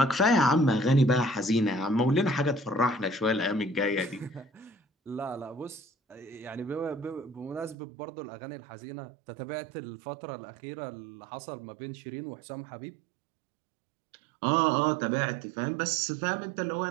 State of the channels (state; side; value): drops out; left; at 7.8 s